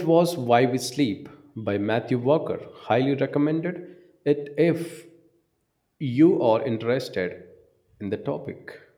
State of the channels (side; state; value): both; identical; correlation 1.00